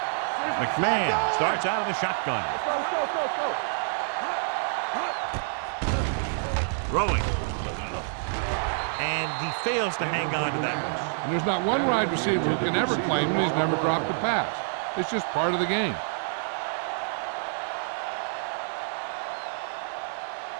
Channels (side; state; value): left; silent; 58 dB below the other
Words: McMahon starts out of the shotgun. Let's go, let's go, let's go, let's go. Throwing. And and he fails to hang on to that. And there's not one wide receiver who can ever claim that he's never dropped a pass. It's just part of the game.